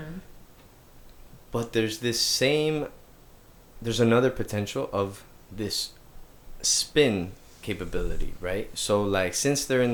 But there's another potential of this spin capability, right? So like since they're in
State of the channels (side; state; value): both; identical; correlation 1.00